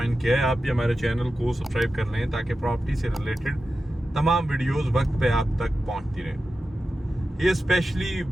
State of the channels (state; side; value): normal; both; correlation 0.92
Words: किया है, आप भी हमारे चैनल को सब्सक्राइब कर लें ताकि प्रॉपर्टी से रिलेटेड तमाम वीडियोस वक्त पे आप तक पहुंचती रहें। ये स्पेशली